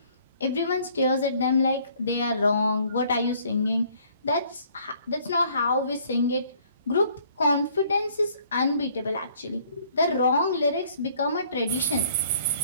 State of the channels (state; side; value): inverted; both; correlation -0.60